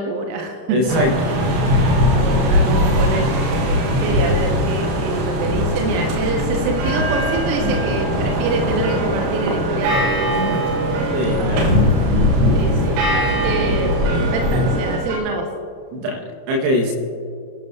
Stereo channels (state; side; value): late; left; 31 ms